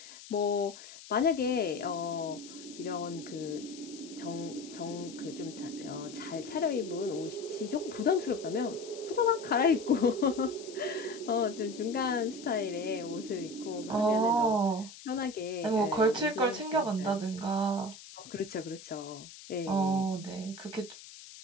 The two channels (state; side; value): noise; left; hiss, 16 dB below the sound